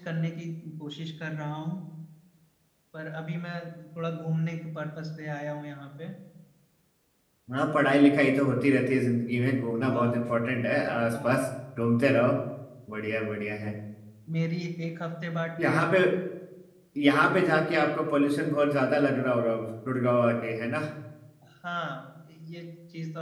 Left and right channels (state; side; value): identical; both; correlation 1.00